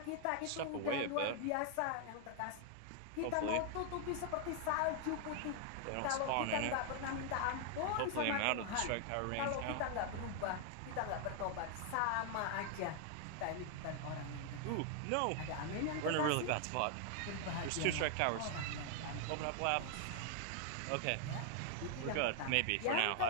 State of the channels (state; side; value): different; both; correlation 0.00